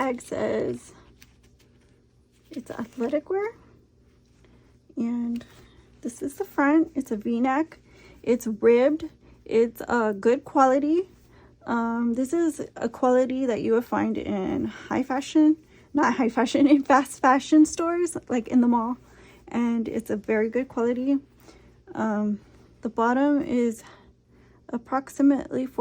says it's athletic wear, and this is the front. It's a V-neck. It's ribbed. It's good quality. This is a quality that you would find in high fashion, not high fashion, in fast fashion stores, like in the mall. And it's a very good quality. The bottom is approximately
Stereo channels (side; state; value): both; identical; correlation 1.00